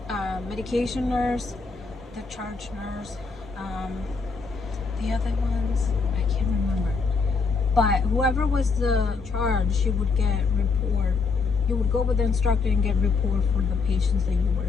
medication nurse, the charge nurse, the other ones, I can't remember. But whoever was the charge, she would get report. You would go with the instructor and get report for the patients that you were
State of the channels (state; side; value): quieter; right; 4.6 dB